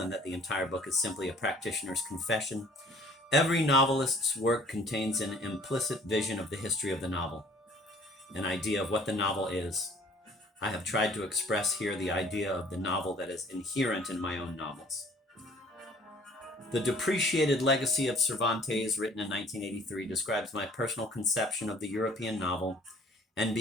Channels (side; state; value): both; normal; correlation 0.54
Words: that the entire book is simply a practitioner's confession? Every novelist's work contains an implicit vision of the history of the novel, an idea of what the novel is. I have tried to express here the idea of the novel that is inherent in my own novels. The Depreciated Legacy of Cervantes, written in 1983, describes my personal conception of the European novel and